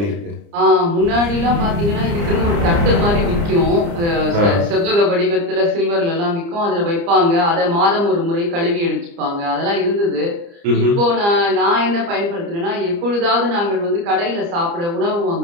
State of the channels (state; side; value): late; left; 29 ms